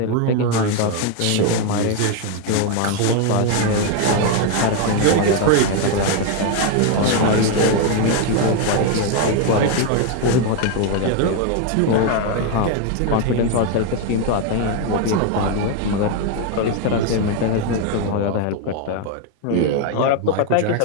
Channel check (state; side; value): different; both; correlation 0.01